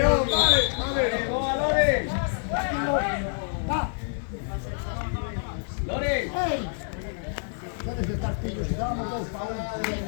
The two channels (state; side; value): silent; right; digital silence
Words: vale. Lore. Va. Lore. ¡Ey! Tienes que estar pillos, si dábamos 2 para 1.